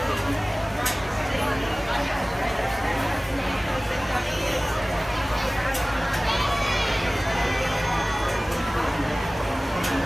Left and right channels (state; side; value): normal; both; correlation 0.98